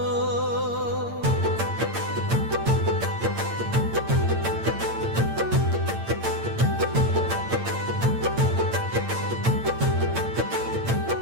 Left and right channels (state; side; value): late; left; 8.8 ms